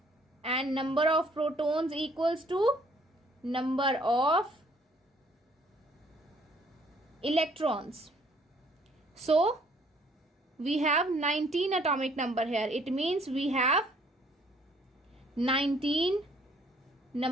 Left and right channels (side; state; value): both; normal; correlation 0.62